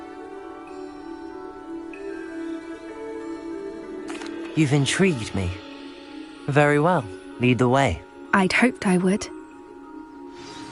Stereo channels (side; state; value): both; identical; correlation 1.00